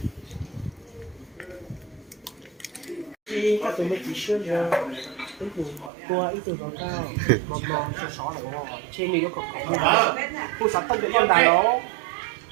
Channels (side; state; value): left; drops out; at 5.9 s